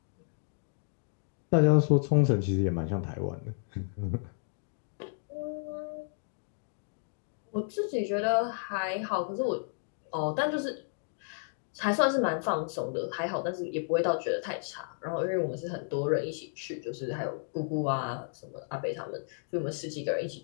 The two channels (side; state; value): right; silent; digital silence